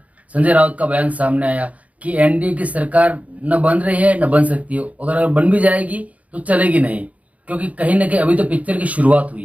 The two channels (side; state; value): left; late; 0.069 ms